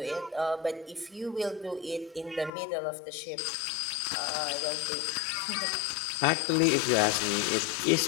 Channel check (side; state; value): right; drops out; at 2.5 s